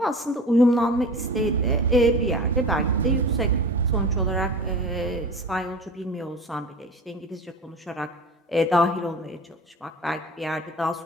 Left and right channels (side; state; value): both; normal; correlation 0.36